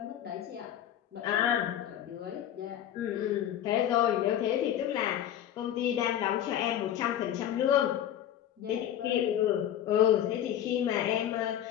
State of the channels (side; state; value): right; quieter; 10.9 dB